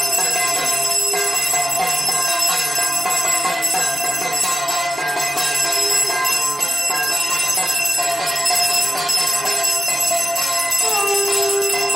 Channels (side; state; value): both; normal; correlation 0.93